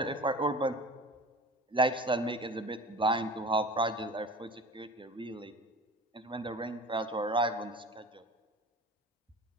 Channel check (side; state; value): both; normal; correlation 0.38